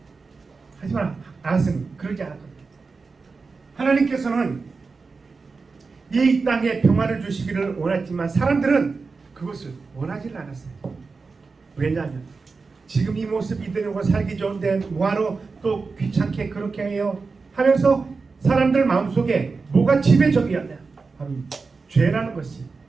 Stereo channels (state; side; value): quieter; left; 4.4 dB